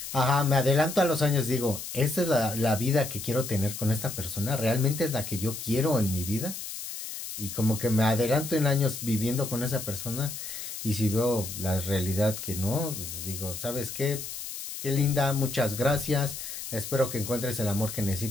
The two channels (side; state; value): left; noise; hiss, 8 dB below the sound